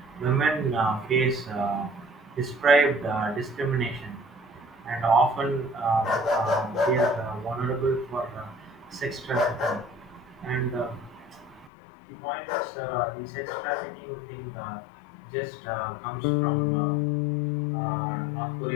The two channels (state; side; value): drops out; right; at 11.7 s